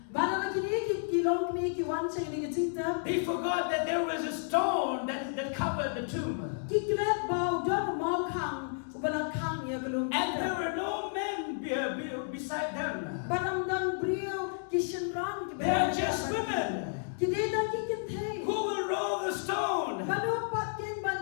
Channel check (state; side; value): silent; right; digital silence